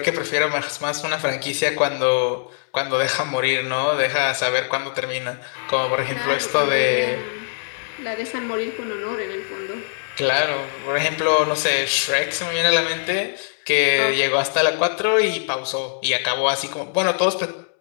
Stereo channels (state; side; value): silent; right; 64 dB below the other